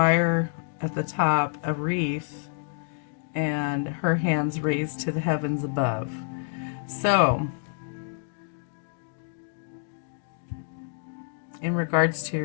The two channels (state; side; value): silent; right; digital silence